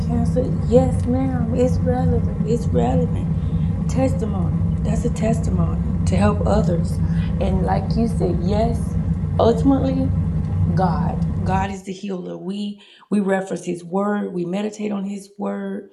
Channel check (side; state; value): both; identical; correlation 1.00